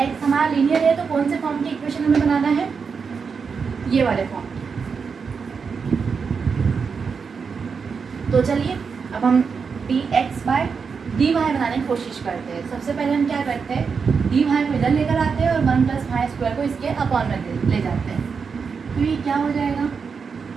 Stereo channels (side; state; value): left; quieter; 5.7 dB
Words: हमारा लीनियर है, तो कौन से फॉर्म की इक्वेशन हमें बनाना है? ये वाले फॉर्म की। तो चलिए अब हम dx/dy बनाने की कोशिश करते हैं। सबसे पहले हम क्या करते हैं, dy को इधर लेकर आते हैं और 1 + y² को इसके अपॉन में ले जाते हैं। तो ये क्या हो जाएगा,